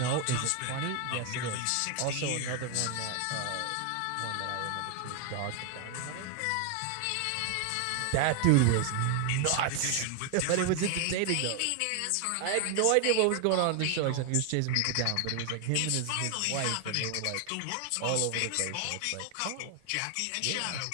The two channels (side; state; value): both; different; correlation 0.01